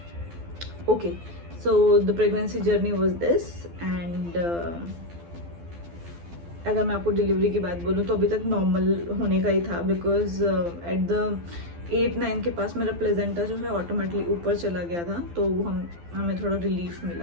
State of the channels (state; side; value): late; left; 12 ms